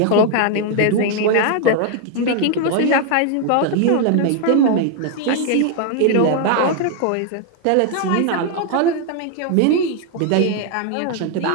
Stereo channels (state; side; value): different; both; correlation 0.00